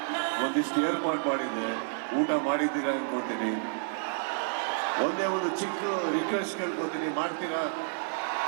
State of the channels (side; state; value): left; silent; 58 dB below the other